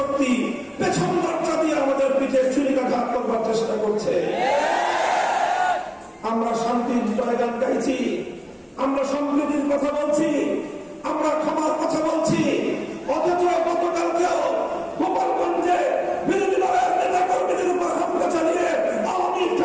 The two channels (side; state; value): both; identical; correlation 1.00